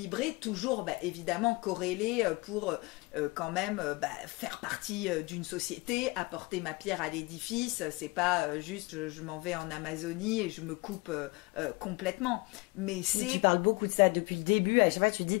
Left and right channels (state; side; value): quieter; right; 25.0 dB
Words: toujours évidemment corrélé pour quand même faire partie d'une société, apporter ma pierre à l'édifice. C'est pas juste je m'en vais en Amazonie et je me coupe complètement. Mais tu parles beaucoup de ça depuis le début. À chaque fois tu